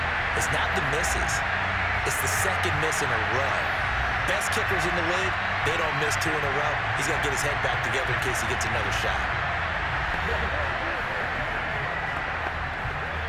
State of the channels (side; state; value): both; identical; correlation 1.00